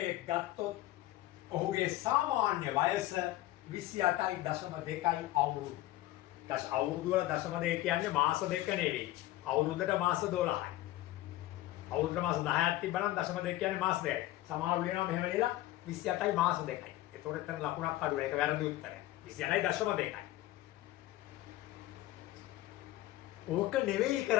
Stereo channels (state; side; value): quieter; right; 16.0 dB